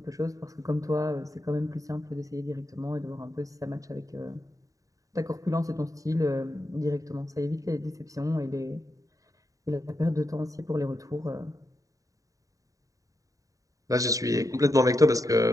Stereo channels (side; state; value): left; late; 0.16 ms